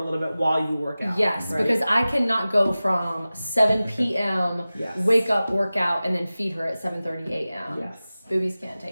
little bit while you work out. yes, right? because I cannot go from 7 p.m., Yes. wake up, work out, and then feed her at 7:30 a.m. Yes. Boobies can't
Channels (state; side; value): inverted; both; correlation -0.96